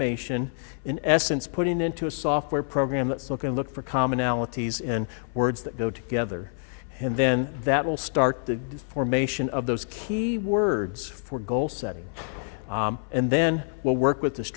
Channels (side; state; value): right; silent; 57 dB below the other